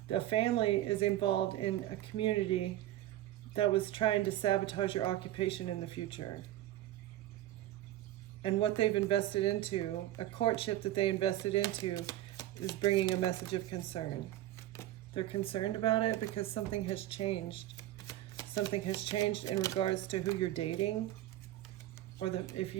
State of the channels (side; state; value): left; quieter; 14.2 dB